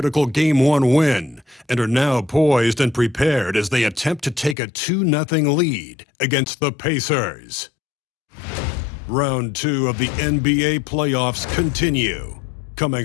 Game 1 win and are now poised and prepared as they attempt to take a 2-0 lead against the Pacers. Round 2 of the NBA playoffs continue, coming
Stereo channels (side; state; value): right; drops out; at 4.5 s